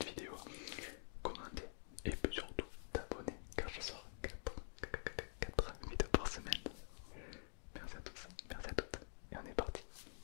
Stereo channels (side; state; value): right; silent; digital silence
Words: vidéo, commenter et surtout t'abonner car je sors 4 vidéos par semaine. Merci à tous, merci à toutes et on est parti.